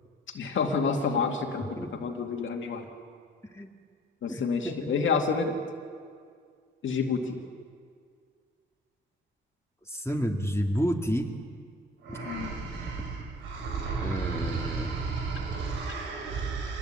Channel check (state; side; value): normal; both; correlation 0.46